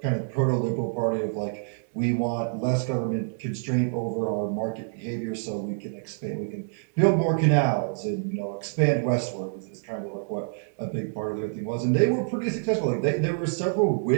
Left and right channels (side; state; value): left; silent; digital silence